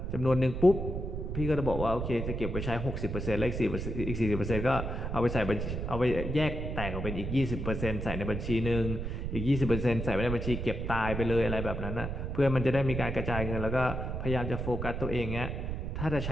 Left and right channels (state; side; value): noise; right; rumble, 4 dB below the sound